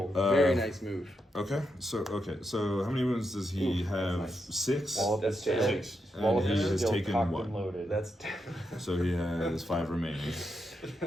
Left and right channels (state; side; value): normal; both; correlation 0.84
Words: Very nice move. Okay, so how many wounds does he have? nice. 6. Wallop is still, 6. And Wallop he is has still taken cocked 1. and loaded. That's So he has 5 remaining.